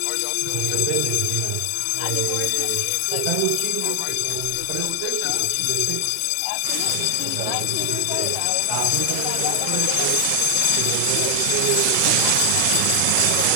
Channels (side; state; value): both; different; correlation 0.00